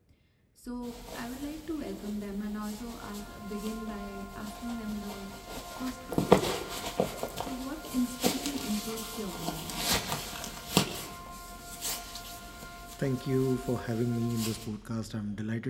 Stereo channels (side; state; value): both; identical; correlation 1.00